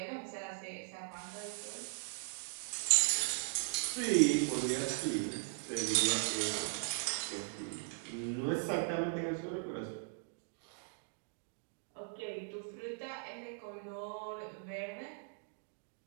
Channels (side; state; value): left; silent; digital silence